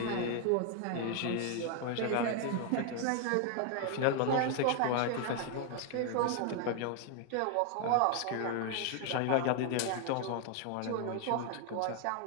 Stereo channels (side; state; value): both; different; correlation 0.00